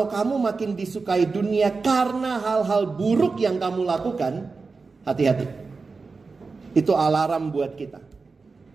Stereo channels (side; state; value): left; quieter; 4.3 dB